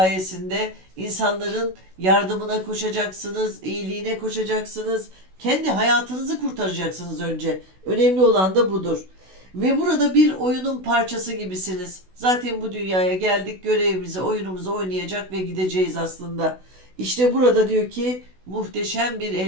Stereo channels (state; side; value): late; left; 16 ms